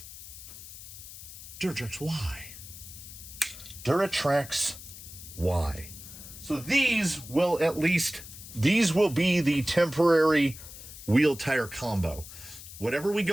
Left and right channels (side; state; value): left; noise; hiss, 14 dB below the sound